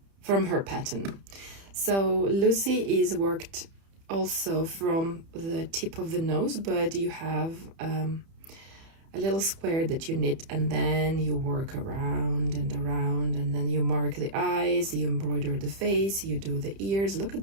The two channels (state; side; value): late; left; 30 ms